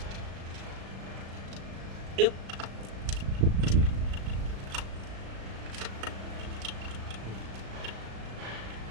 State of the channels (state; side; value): late; left; 36 ms